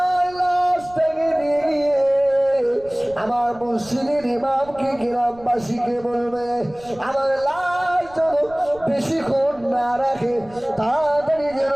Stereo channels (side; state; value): right; noise; rumble, 23 dB below the sound